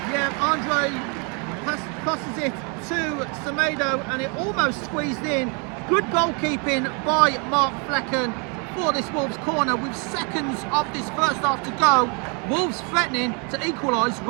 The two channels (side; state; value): left; quieter; 35.0 dB